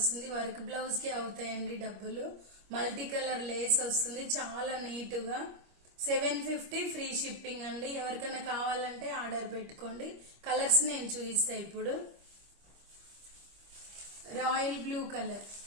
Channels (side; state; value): left; late; 25 ms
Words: వర్క్ బ్లౌజ్ కి అవుతాయండి డబ్బులు. మల్టీ కలర్ లేస్ వస్తుంది, చాలా నీట్ గా. 750 ఫ్రీ షిప్పింగ్ అండి. ఎవరికైనా కావాలంటే ఆర్డర్ పెట్టుకోండి. కలర్స్ నేను చూపిస్తా ఇప్పుడు. Royal blue colour,